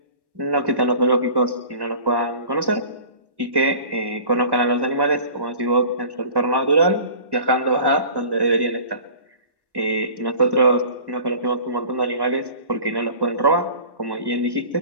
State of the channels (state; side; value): late; left; 1.1 ms